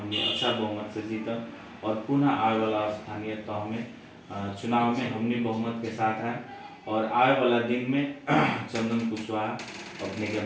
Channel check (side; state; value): both; identical; correlation 1.00